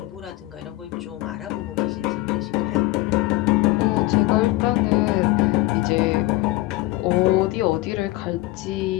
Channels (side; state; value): right; quieter; 18.7 dB